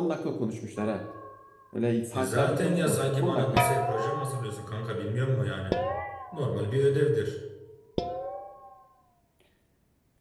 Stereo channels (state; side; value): identical; both; correlation 1.00